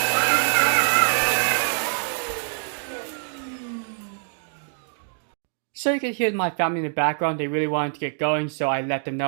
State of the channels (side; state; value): left; silent; digital silence